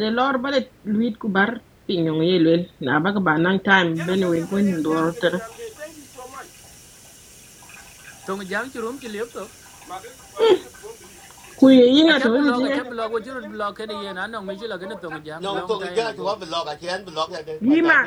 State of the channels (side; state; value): both; identical; correlation 1.00